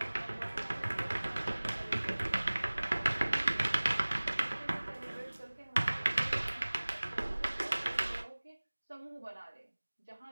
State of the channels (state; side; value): inverted; both; correlation -1.00